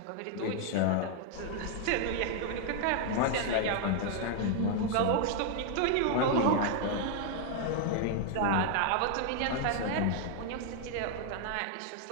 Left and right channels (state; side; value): different; both; correlation 0.00